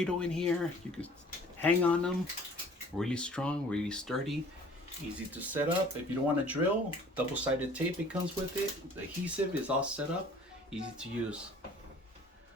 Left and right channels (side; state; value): both; normal; correlation 0.51